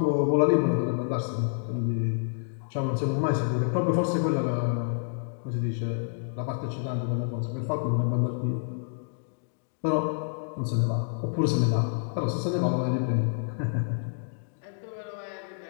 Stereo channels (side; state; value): right; silent; digital silence